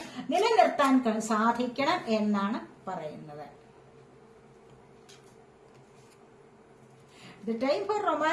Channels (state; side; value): identical; both; correlation 1.00